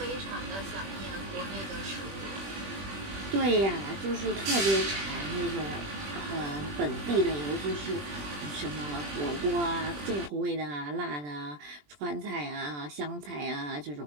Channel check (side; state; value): left; late; 20 ms